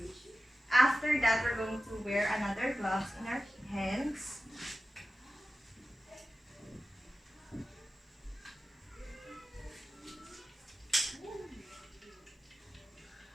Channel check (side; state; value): both; normal; correlation 0.94